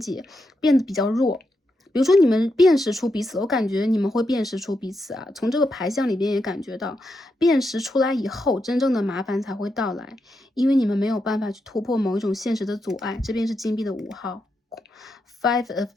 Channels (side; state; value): both; normal; correlation 0.84